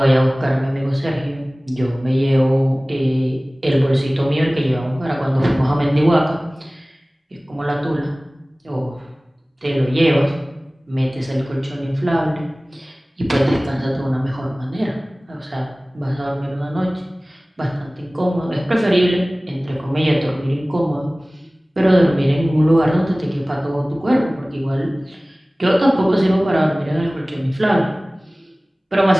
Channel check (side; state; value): both; normal; correlation 0.98